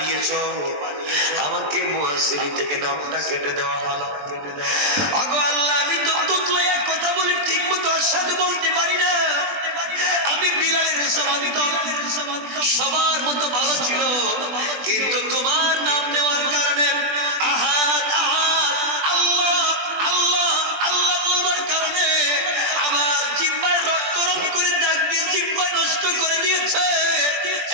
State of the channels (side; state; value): left; late; 20 ms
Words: আমাকে মুয়াজ্জিন থেকে নামটা কেটে দেওয়া হলো। ওগো আল্লাহ, আমি তো তুতলায়া কথা বলে ঠিক মতো আশহাদু বলতে পারি না, আমি বিলালের সমান, সবার মতো ভালো ছিল, কিন্তু তোমার নাম নেওয়ার কারণে, আহাদ আহাদ, আল্লাহ আল্লাহ আল্লাহ বলবার কারণে আমার জিহ্বায় রক্ত রং করে দাগ দিয়ে জিহ্বা নষ্ট করে দিয়েছে,